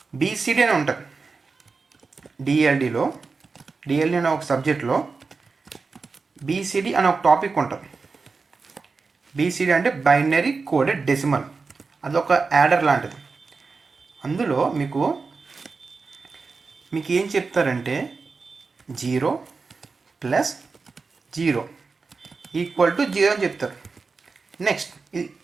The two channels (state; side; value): quieter; left; 4.4 dB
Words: బీసీడీ అని ఉంటుంది. డిఎల్డి అనే ఒక సబ్జెక్ట్లో బీసీడీ అనే ఒక టాపిక్ ఉంటుంది. బీసీడీ అంటే బైనరీ కోడెడ్ డెసిమల్, అదొక యాడర్ లాంటిది. అందులో మీకు ఏం చెప్తారంటే 0 + 0 = 0 అని చెప్తారు. నెక్స్ట్